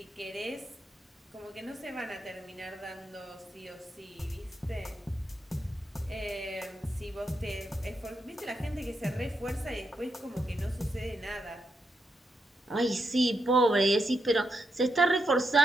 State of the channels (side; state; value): both; normal; correlation 0.83